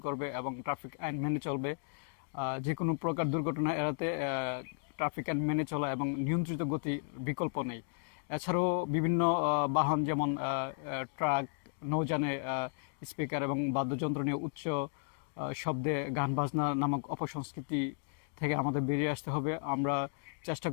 করবে এবং ট্রাফিক আইন মেনে চলবে। যে কোনো প্রকার দুর্ঘটনা এড়াতে ট্রাফিক আইন মেনে চলা এবং নিয়ন্ত্রিত গতি বিকল্প নেই। এছাড়াও বিভিন্ন বাহন যেমন ট্রাক, নৌযানে স্পিকার এবং বাদ্যযন্ত্র নিয়ে উচ্চ শব্দে গান বাজনা নামক অপসংস্কৃতি থেকে আমাদের বেরিয়ে আসতে হবে। আমরা চেষ্টা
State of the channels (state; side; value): silent; right; digital silence